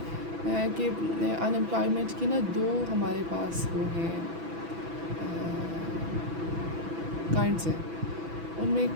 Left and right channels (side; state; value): left; late; 6.0 ms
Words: کہ ان امپلائمنٹ کی نا دو ہمارے پاس وہ ہیں کائنڈس ہیں, ان میں ایک